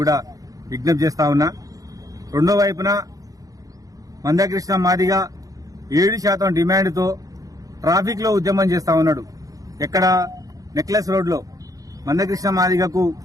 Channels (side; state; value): left; late; 0.17 ms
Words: కూడా విజ్ఞప్తి చేస్తా ఉన్నా. రెండో వైపున మందకృష్ణ మాదిగ 7% డిమాండ్తో ట్రాఫిక్ లో ఉద్యమం చేస్తా ఉన్నాడు. ఎక్కడ? నెక్లెస్ రోడ్ లో. మందకృష్ణ మాదిగకు